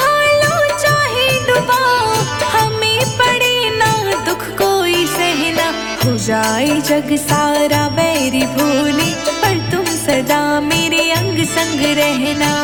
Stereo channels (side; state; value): right; noise; hum, 22 dB below the sound